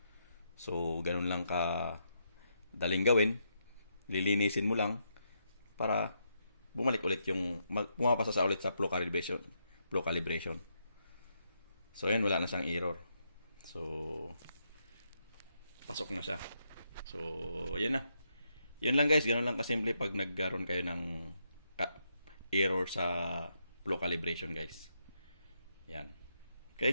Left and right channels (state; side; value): inverted; both; correlation -0.80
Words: So, ganun lang ka daling gawin. Lilinisin mo lang para bumalik ulit pumapasa ulit sa flow calibration. So, yan, wala na siyang error. So, pasok na siya. So, yan na. Yun lang guys, ganun lang kasimple pag nagkaroon kayo ng error sa flow calibration guys. Yan.